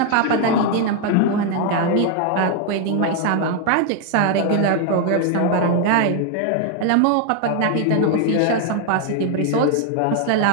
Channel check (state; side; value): different; both; correlation 0.00